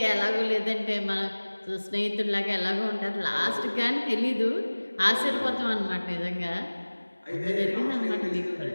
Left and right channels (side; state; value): both; inverted; correlation -1.00